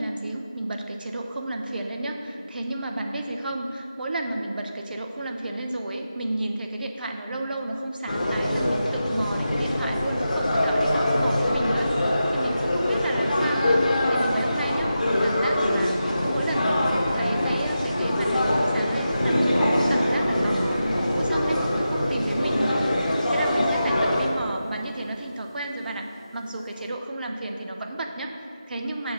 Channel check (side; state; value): both; inverted; correlation -0.89